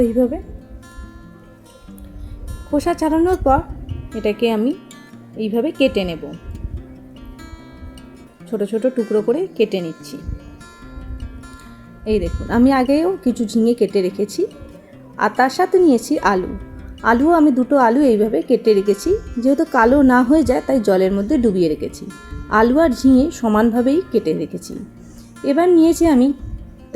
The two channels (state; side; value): identical; both; correlation 1.00